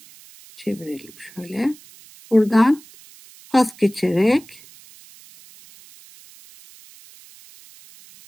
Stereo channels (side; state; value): right; noise; hiss, 23 dB below the sound